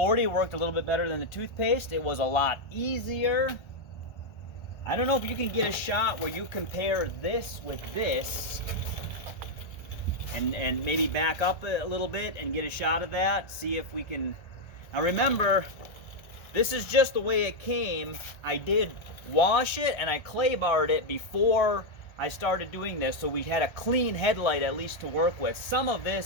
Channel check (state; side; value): late; right; 1.3 ms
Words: worked a little bit better than the toothpaste. It was a lot easier. I don't know if you can get a shot where you compare this with this and maybe back up a little bit and get a shot of that. See if we can. Now remember, this is just the way it came. I did wash it and I clay barred it before I started doing this, so we had a clean headlight at least to work with. Some of